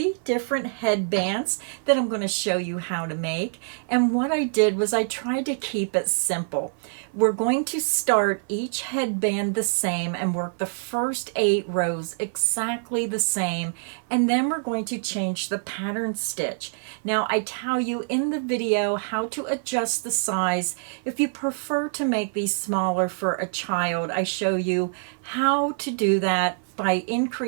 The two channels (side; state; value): left; silent; 56 dB below the other